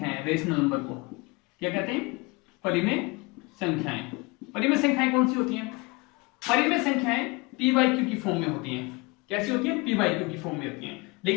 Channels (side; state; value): right; quieter; 25.8 dB